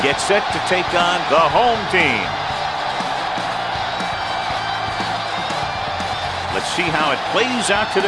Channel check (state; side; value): identical; both; correlation 1.00